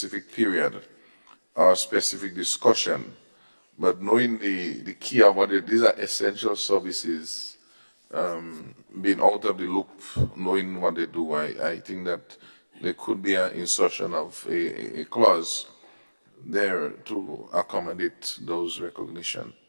period or specific discussion. But knowing the key about it, these are essential services, being out of the loop, knowing what they do, I think that there could be an insertion of a clause there to accommodate those recognition.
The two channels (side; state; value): both; inverted; correlation -1.00